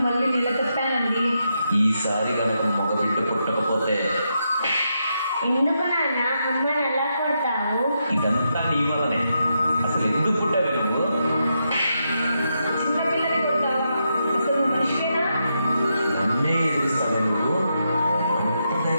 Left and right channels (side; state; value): both; inverted; correlation -0.83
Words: మళ్ళీ నిలదప్పానండి. ఈసారి కనుక మగబిడ్డ పుట్టకపోతే ఎందుకు నాన్న అమ్మని ఎలా కొడతావు? ఇదంతా నీ వల్లనే. అసలు ఎందుకు పుట్టావు నువ్వు? చిన్నపిల్లని కొడతావా? అసలు మనిషివేనా? నన్నే ఎదురుస్తావు నువ్వు? అంత